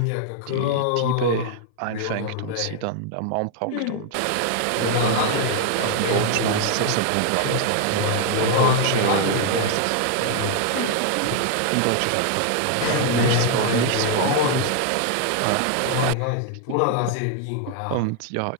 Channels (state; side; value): different; both; correlation 0.00